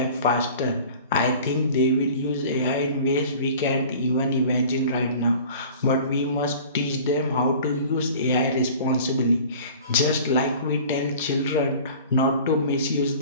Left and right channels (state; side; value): inverted; both; correlation -0.44